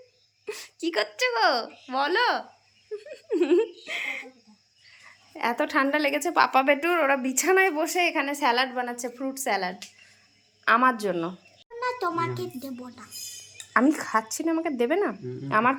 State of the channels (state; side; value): identical; both; correlation 1.00